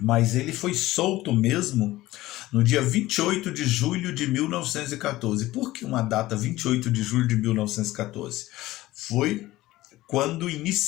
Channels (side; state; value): right; quieter; 17.1 dB